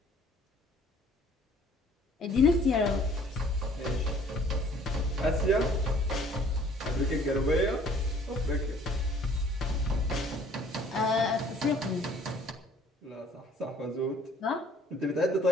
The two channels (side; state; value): both; normal; correlation 0.56